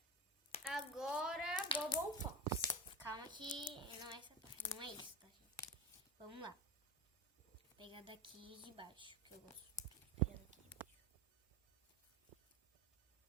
Agora, Bubble Pops. Calma que não é essa parte, não é isso, tá, gente? Vamos lá. Vou pegar daqui de baixo, que eu gosto de pegar daqui de baixo.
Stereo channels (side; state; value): both; normal; correlation 0.24